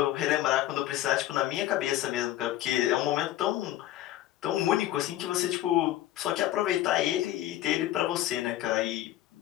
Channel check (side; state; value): right; quieter; 14.0 dB